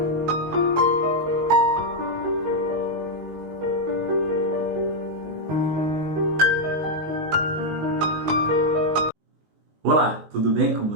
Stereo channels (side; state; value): left; late; 19 ms